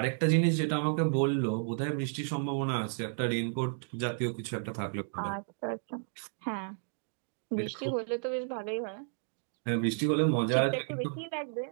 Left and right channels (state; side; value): silent; left; digital silence